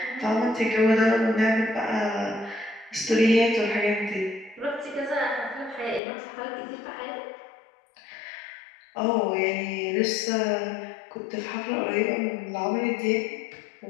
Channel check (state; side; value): drops out; right; at 6.0 s